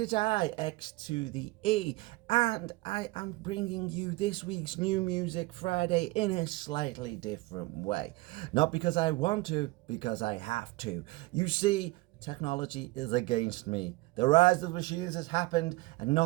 I, X to the E, and I am bringing you this week's New Music Friday in a slightly different way. Not because I want to, because I have to. You see, technology is against me. The rise of the machines has happened, and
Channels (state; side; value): quieter; left; 21.7 dB